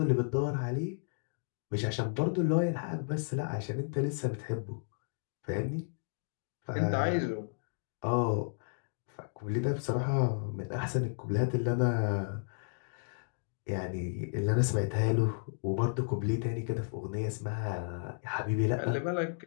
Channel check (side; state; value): right; silent; digital silence